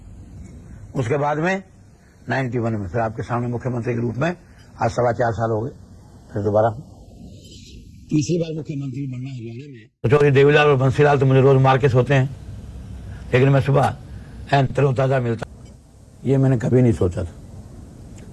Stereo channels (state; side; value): identical; both; correlation 1.00